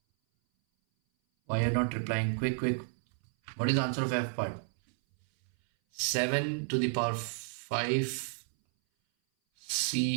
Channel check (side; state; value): left; silent; 57 dB below the other